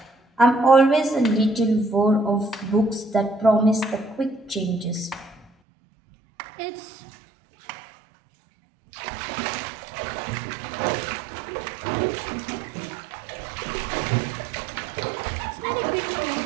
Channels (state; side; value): drops out; left; at 5.5 s